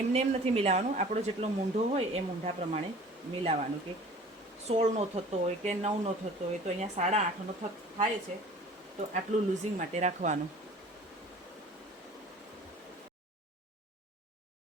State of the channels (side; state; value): both; normal; correlation 0.46